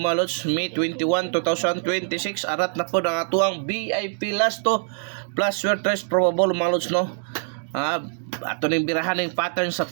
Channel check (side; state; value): left; silent; digital silence